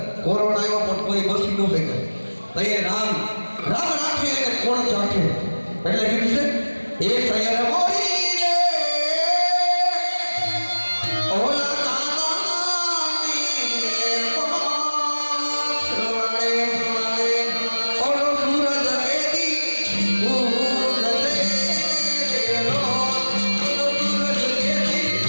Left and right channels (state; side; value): inverted; both; correlation -1.00